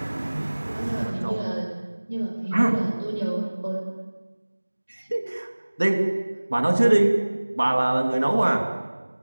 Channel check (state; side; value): inverted; both; correlation -1.00